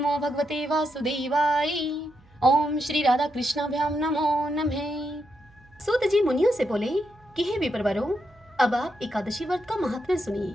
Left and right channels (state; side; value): noise; right; hum, 29 dB below the sound